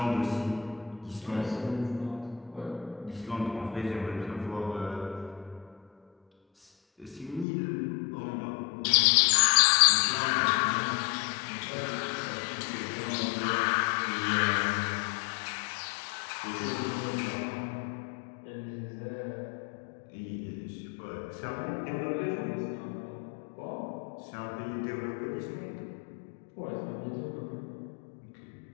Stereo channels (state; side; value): drops out; right; at 7.5 s